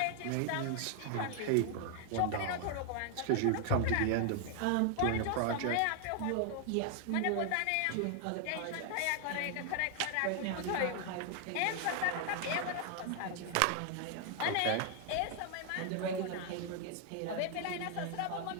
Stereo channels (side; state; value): both; different; correlation 0.00